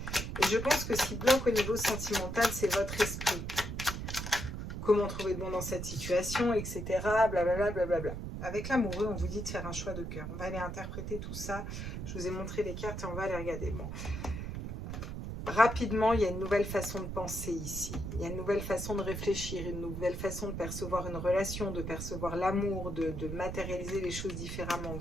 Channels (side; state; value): right; noise; rumble, 6 dB below the sound